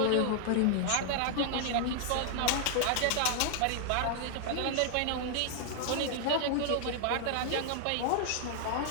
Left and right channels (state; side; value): different; both; correlation -0.01